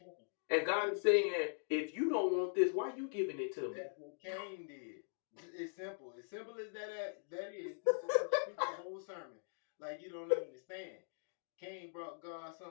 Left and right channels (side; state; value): right; silent; digital silence